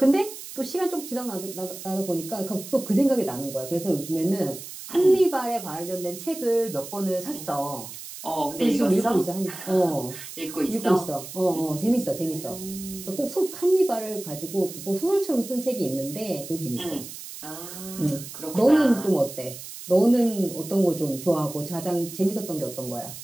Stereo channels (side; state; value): right; noise; hiss, 12 dB below the sound